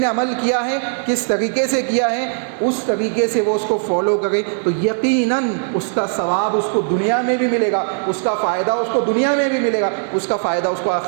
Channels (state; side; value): silent; left; digital silence